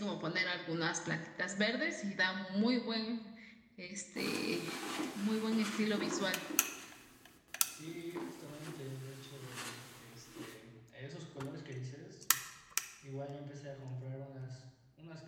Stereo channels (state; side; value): identical; both; correlation 1.00